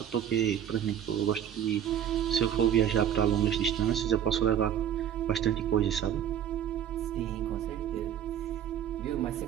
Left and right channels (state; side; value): quieter; left; 9.7 dB